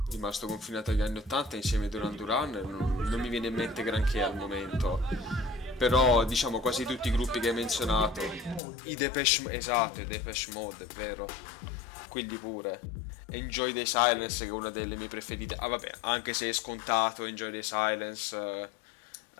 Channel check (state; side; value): drops out; right; at 8.6 s